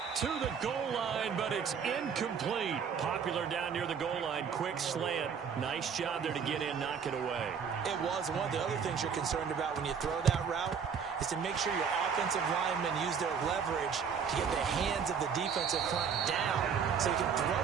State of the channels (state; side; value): quieter; left; 6.7 dB